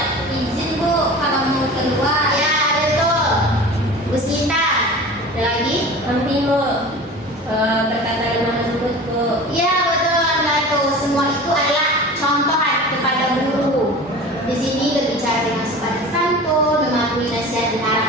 izin, Bu, kalau mau keluar. Ya, betul. Bu Sinta. Ada lagi? Penting, Bu. Berkata dengan lembut, Bu. Ya, betul. Betul. Semua itu adalah contoh kepada guru. Di sini berbicara dengan sopan santun, mematuhi nasihat dan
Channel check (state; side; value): normal; both; correlation 0.37